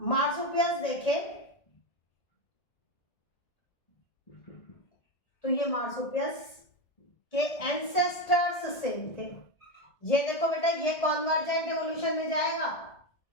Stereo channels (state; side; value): late; right; 1.8 ms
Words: मार्सुपियल्स देखे तो ये मार्सुपियल्स के एंसेस्टर्स सेम थे। ये देखो बेटा, ये कॉन्वर्जेंट इवोल्यूशन में जाएगा।